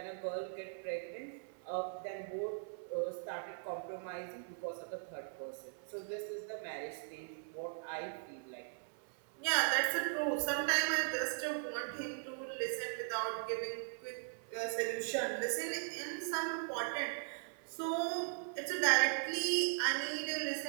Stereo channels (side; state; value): left; silent; 52 dB below the other